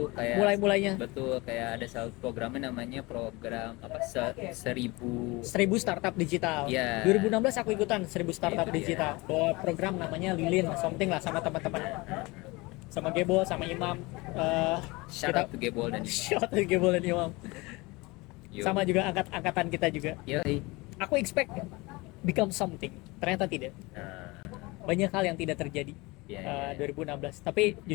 kayak mulai-mulainya betul, kayak ada satu programnya namanya program apa 1000 startup digital. ya. 2016 aku ikutan 1000 startup Itu dia. digital. Bawa program namanya Lilin something lah, sama teman-teman. Sama Gebol, sama Imam. Shout out to Gebol dan Shout out to Gebol dan Imam. Yo. Sama juga angkatan kita juga. Yoi. Aku expect become something. Ternyata tidak. Nah, Banyak hal yang tidak terjadi. ya, 2016. Tapi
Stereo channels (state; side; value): quieter; right; 23.8 dB